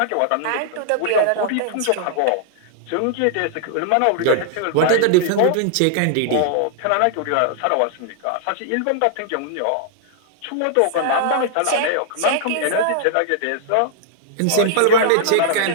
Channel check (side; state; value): both; different; correlation 0.00